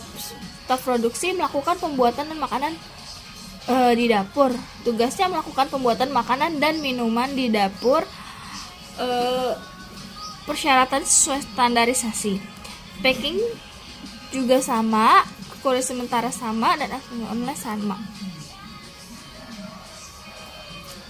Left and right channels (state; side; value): identical; both; correlation 1.00